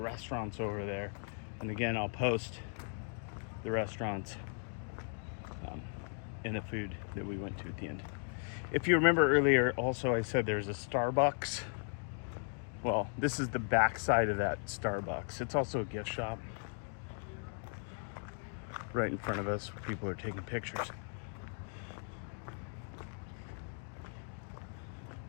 over there. And again, I'll post the restaurants and the food that we went to at the end. If you remember earlier, also I said there's a Starbucks. Well, this is the back side of that Starbucks. It's also a gift shop right in front of us where people are taking pictures.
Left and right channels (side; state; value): right; silent; 53 dB below the other